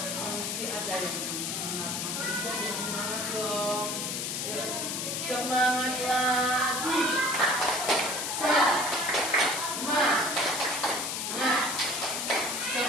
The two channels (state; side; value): noise; left; hiss, 2 dB below the sound